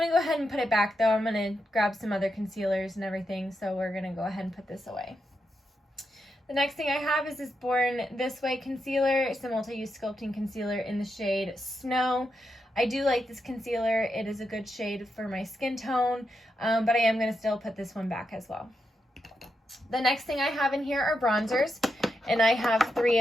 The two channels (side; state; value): both; normal; correlation 0.84